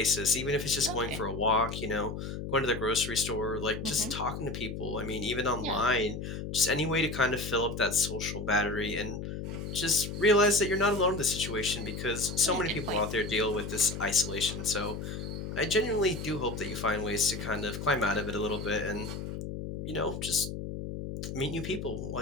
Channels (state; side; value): noise; left; hum, 6 dB below the sound